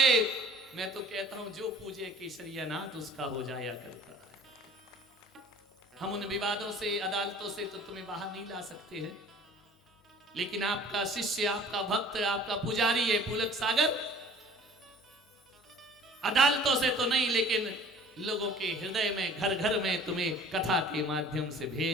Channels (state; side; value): normal; both; correlation 0.49